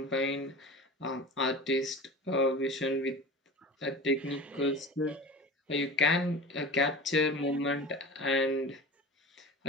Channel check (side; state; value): both; normal; correlation 0.34